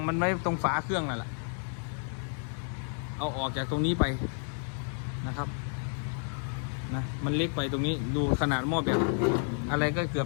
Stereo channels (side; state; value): right; silent; 57 dB below the other